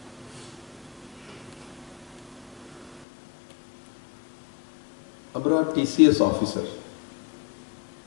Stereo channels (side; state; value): right; drops out; at 3.1 s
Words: আমরা TCS officer,